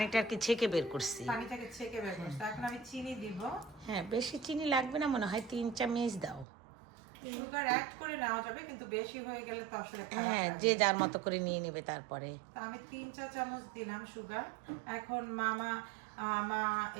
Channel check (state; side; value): drops out; left; at 6.5 s